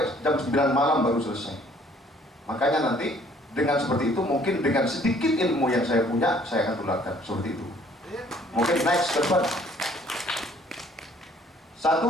jam 9 malam baru selesai. Makanya nanti dengan seperti itu, mungkin dengan sedikit ilmu yang saya punya, saya akan tularkan seperti itu. Mungkin next ke depan.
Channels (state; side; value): normal; both; correlation 0.59